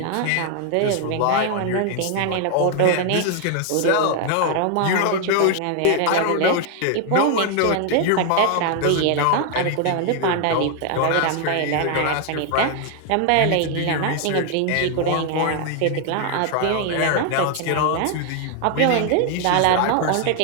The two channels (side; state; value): both; different; correlation 0.00